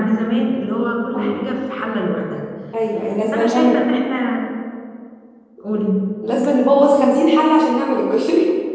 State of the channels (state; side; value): identical; both; correlation 1.00